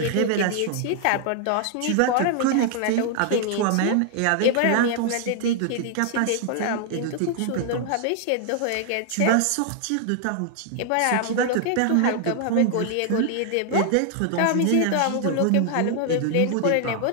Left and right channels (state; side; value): different; both; correlation 0.00